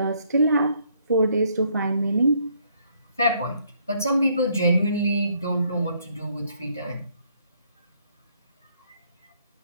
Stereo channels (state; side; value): inverted; both; correlation -0.69